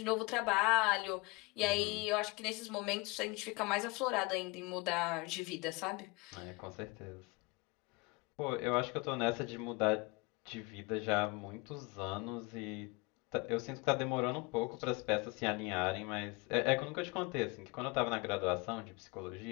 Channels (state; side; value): quieter; right; 26.5 dB